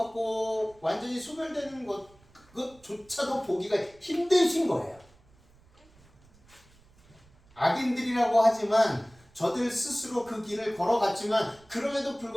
완전히 소멸되는 그것조차도 보기가 힘드신 거예요. 악인들이라고 하지만 저들 스스로 그 길을 걸어갔지만 그럼에도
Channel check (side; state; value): right; noise; rumble, 29 dB below the sound